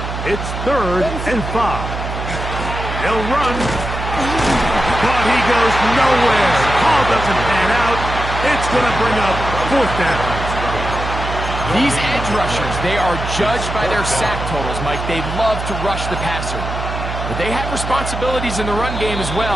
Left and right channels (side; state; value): right; noise; hum, 6 dB below the sound